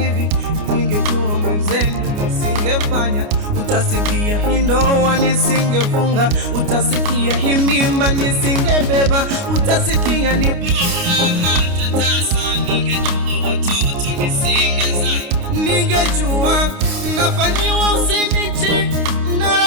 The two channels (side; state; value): left; late; 29 ms